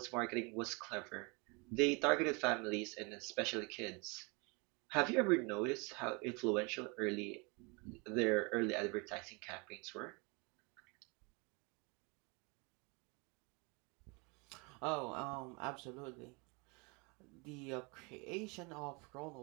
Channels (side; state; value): left; quieter; 30.2 dB